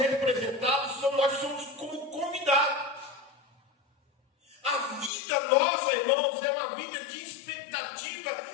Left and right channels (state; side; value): drops out; right; at 5.1 s